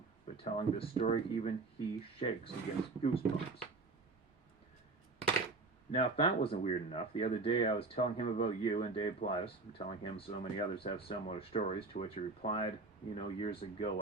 But telling this story, even he shakes and gets goosebumps. Now, if that wasn't weird enough, the other day I was telling him about you and Dave Plaitis, and telling him so many others have similar stories, to which he replied, years ago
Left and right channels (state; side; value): quieter; left; 3.6 dB